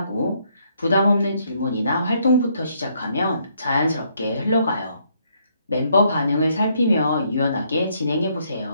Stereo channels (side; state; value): both; inverted; correlation -0.71